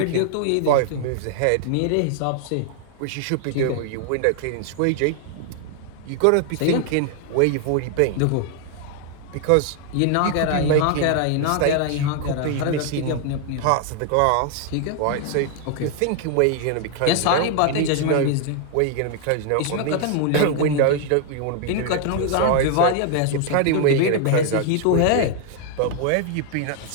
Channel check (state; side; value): different; both; correlation 0.00